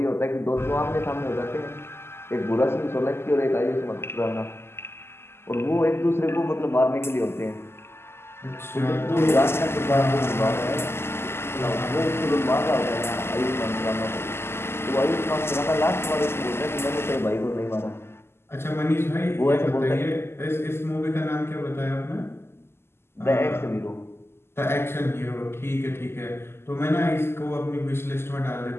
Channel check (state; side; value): late; right; 0.12 ms